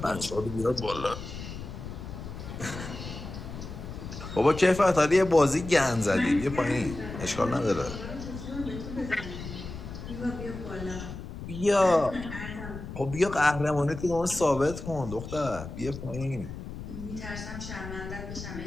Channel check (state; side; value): noise; left; rumble, 10 dB below the sound